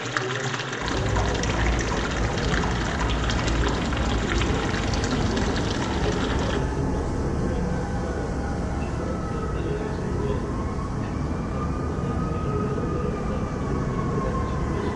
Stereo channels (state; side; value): identical; both; correlation 1.00